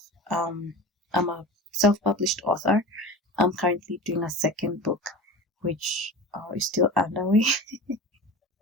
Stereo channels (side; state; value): both; normal; correlation 0.33